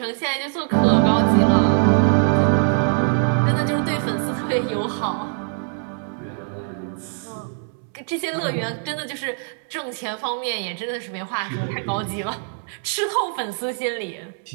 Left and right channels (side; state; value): left; silent; digital silence